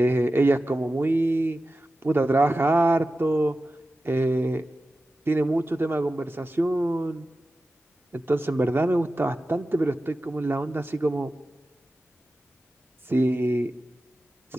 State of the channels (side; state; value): both; normal; correlation 0.94